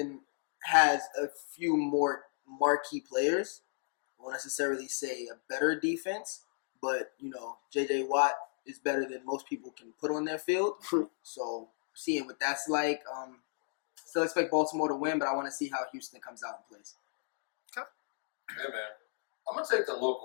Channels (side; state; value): right; silent; 55 dB below the other